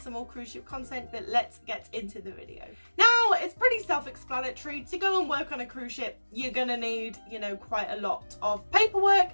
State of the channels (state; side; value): inverted; both; correlation -1.00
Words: some more cruise ship content, but let's get into the video. Now, it's pretty self-explanatory. To go and work on a cruise ship, you're going to need, quite a lot of paperwork.